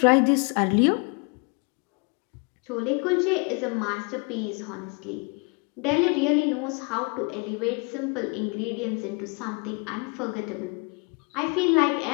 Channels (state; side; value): quieter; right; 32.9 dB